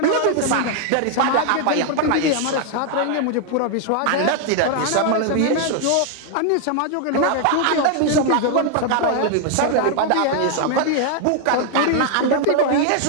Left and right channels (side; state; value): both; different; correlation 0.00